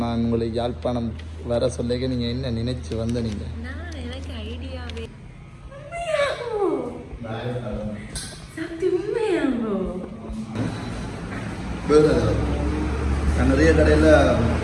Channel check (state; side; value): identical; both; correlation 1.00